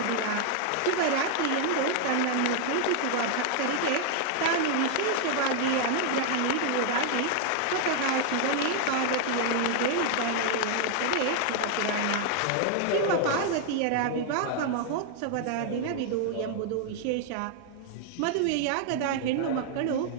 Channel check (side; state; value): both; different; correlation 0.00